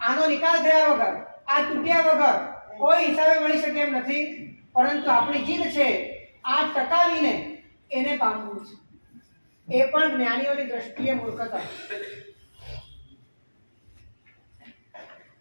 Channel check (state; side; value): inverted; both; correlation -1.00